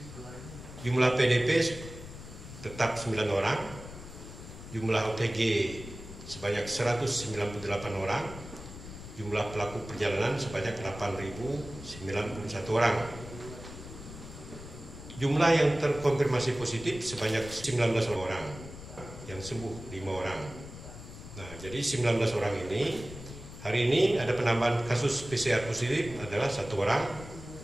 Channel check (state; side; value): noise; left; rumble, 13 dB below the sound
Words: Jumlah PDP tetap 9 orang, jumlah OTG sebanyak 198 orang, jumlah pelaku perjalanan sebanyak 8.091 orang. Jumlah yang terkonfirmasi positif sebanyak 19 orang, yang sembuh 5 orang. Nah, jadi 19 orang ini, hari ini ada penambahan kasus PCR positif adalah 1 orang,